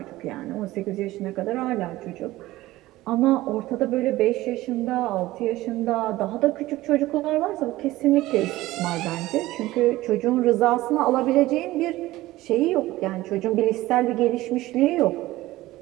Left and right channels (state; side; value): quieter; left; 17.3 dB